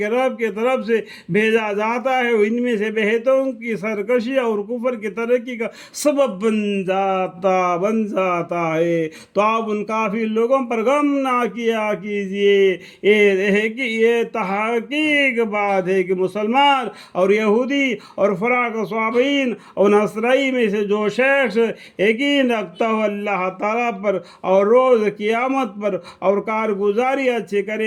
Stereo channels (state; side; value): identical; both; correlation 1.00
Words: رب کی طرف سے بھیجا جاتا ہے ان میں سے بہتوں کی سرکشی اور کفر کی ترقی کا سبب بن جاتا ہے، تو آپ ان کافی لوگوں پر غم نہ کیا کیجیے۔ یہ تحقیق بات ہے کہ مسلمان اور یہودی اور فراق صابئین اور نصرائی میں سے جو شخص یقین رکھتا ہو اللہ تعالیٰ پر اور روز قیامت پر اور کارگزاری اچھی